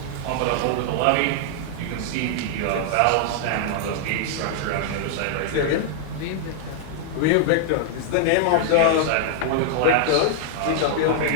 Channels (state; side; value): different; both; correlation -0.01